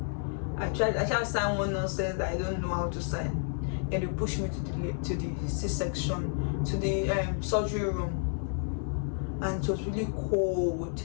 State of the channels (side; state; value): right; silent; 57 dB below the other